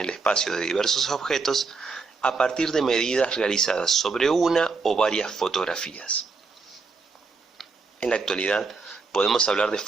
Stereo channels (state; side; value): quieter; left; 4.4 dB